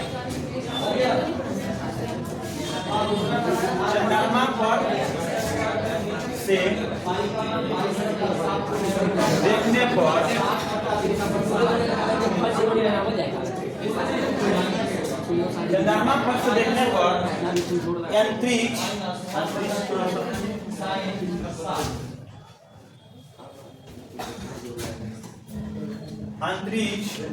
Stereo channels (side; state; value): both; identical; correlation 1.00